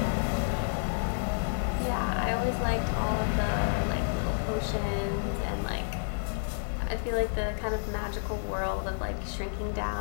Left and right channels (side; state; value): right; silent; digital silence